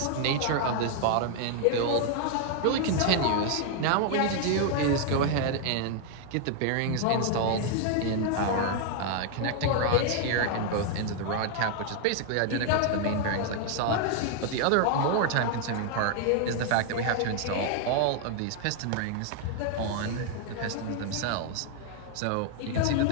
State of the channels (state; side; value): different; both; correlation 0.00